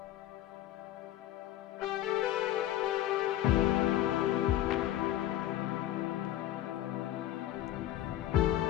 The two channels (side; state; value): right; quieter; 13.5 dB